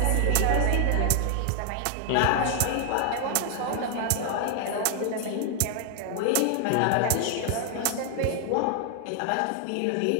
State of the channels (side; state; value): both; different; correlation 0.00